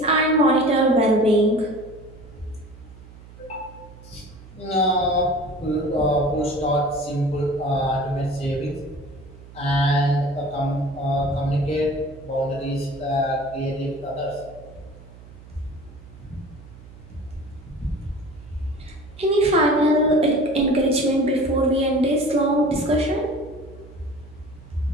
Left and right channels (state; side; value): noise; right; hum, 19 dB below the sound